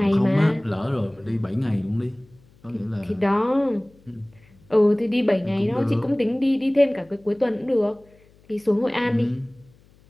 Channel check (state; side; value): noise; left; hum, 29 dB below the sound